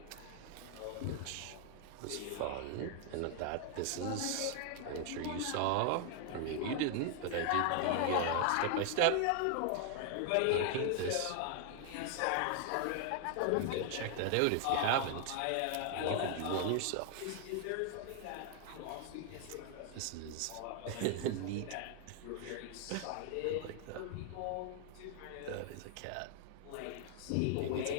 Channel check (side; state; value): both; different; correlation 0.00